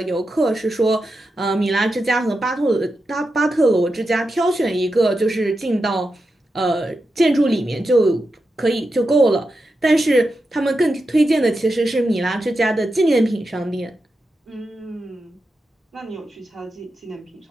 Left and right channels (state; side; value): normal; both; correlation 0.89